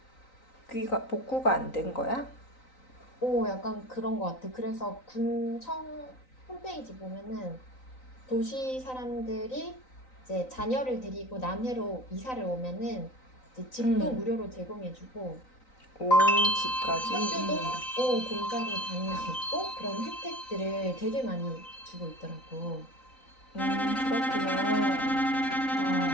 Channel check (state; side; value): late; right; 3.9 ms